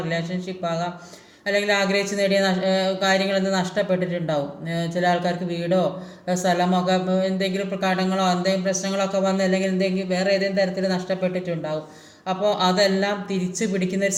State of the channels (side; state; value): both; identical; correlation 1.00